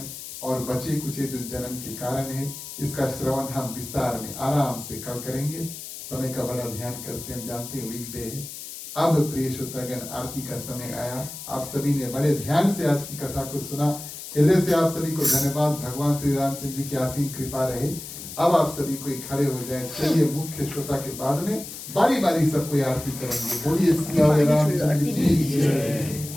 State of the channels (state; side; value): noise; left; hiss, 11 dB below the sound